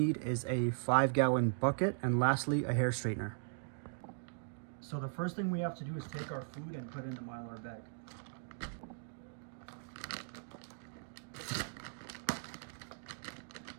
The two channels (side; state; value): left; silent; digital silence